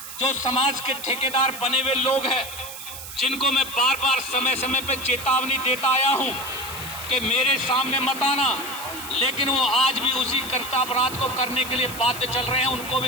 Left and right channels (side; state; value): right; noise; hiss, 11 dB below the sound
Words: जो समाज के ठेकेदार बने हुए लोग हैं, जिनको मैं बार बार समय समय पर चेतावनी देता आया हूं कि मेरे सामने मत आना, लेकिन वो आज भी उसी कर्तव्यपराध को करने के लिए बाध्य चल रहे हैं, उनको